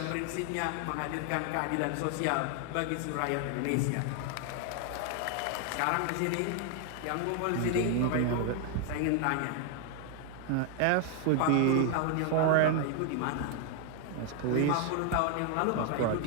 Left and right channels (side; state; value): both; different; correlation 0.00